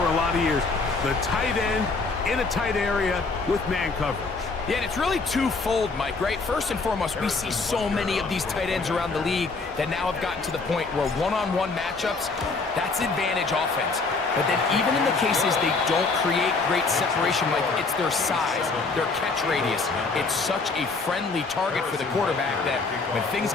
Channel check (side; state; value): right; quieter; 4.0 dB